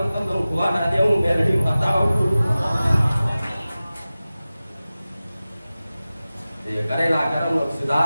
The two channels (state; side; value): inverted; both; correlation -0.96